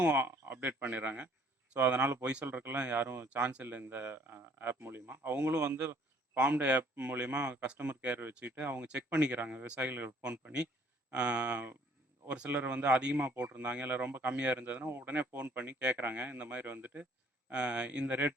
அப்டேட் பண்ணிடுறாங்க. ஸோ அதனால பொய் சொல்றதுக்கெல்லாம் யாரும் சான்ஸ் இல்ல இந்த ஆப் மூலியமா. அவங்களும் வந்து ஃபார்ம் டே ஆப் மூலியமா கஸ்டமர் கேர் வச்சுக்கிட்டு அவங்க செக் பண்ணிக்கிறாங்க. விவசாயிகளுக்கு ஃபோன் பண்ணி. அ ஒரு சிலர் வந்து அதிகமா போட்டிருந்தாங்க, இல்ல ரொம்ப கம்மியா இருந்ததுன்னா, உடனே ஃபோன் பண்ணி கேட்குறாங்க. இந்த மாரி வந்துட்டு இந்த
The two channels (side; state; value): both; normal; correlation 0.60